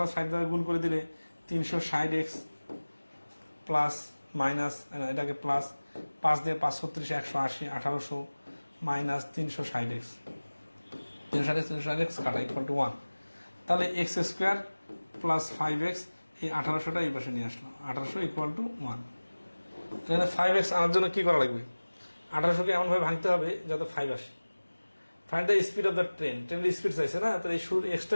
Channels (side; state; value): both; inverted; correlation -1.00